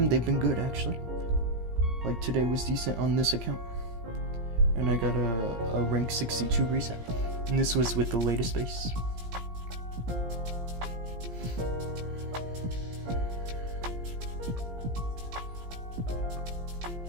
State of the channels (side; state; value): left; late; 17 ms